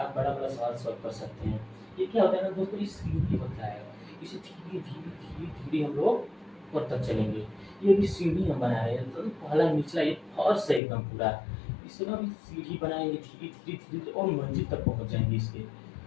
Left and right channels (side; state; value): right; drops out; at 10.8 s